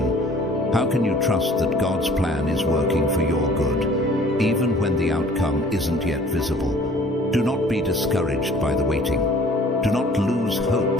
How can you trust that God's plan is working for your good, even when the outcome isn't yet visible? Do not be discouraged by the waiting. Do not lose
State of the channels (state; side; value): normal; both; correlation 0.52